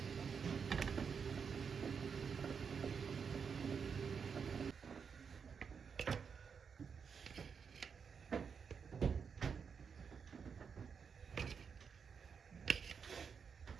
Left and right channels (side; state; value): left; quieter; 6.3 dB